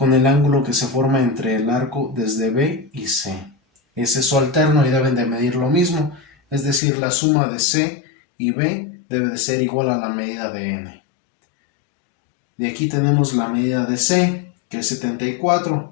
el ángulo que se forma entre el arco desde B y C. ese es su alterno y deben de medir lo mismo, es decir, la suma de C y B debe de ser igual a la medida de N. De aquí tenemos la medida de C, que es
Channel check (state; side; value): drops out; right; at 6.8 s